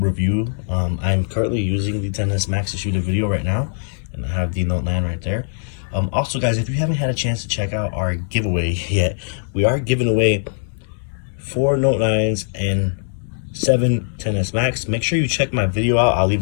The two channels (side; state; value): right; silent; digital silence